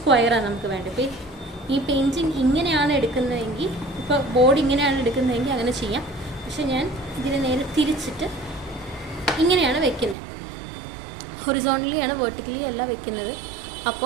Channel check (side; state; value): left; drops out; at 10.2 s